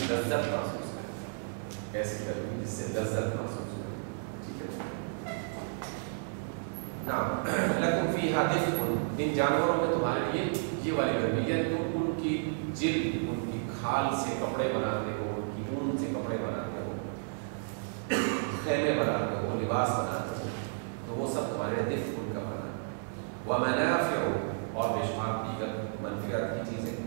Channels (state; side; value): silent; left; digital silence